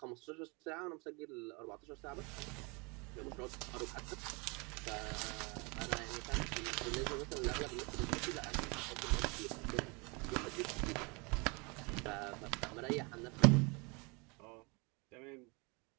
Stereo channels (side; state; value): left; quieter; 29.7 dB